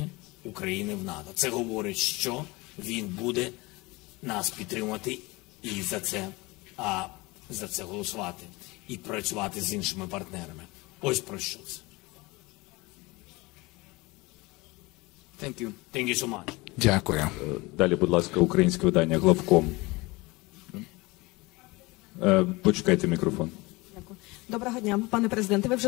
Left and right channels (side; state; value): right; quieter; 23.4 dB